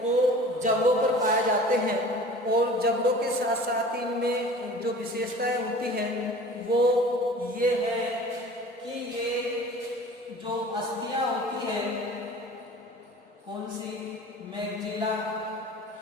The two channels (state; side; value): normal; both; correlation 0.43